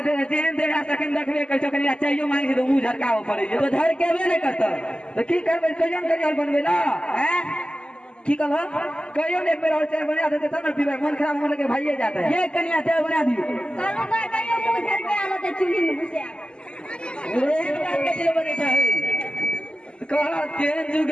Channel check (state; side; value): late; right; 0.050 ms